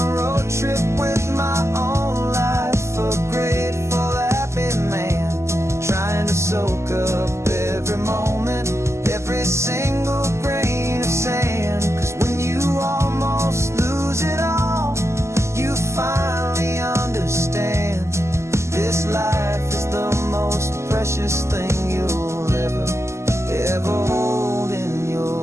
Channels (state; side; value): late; left; 0.13 ms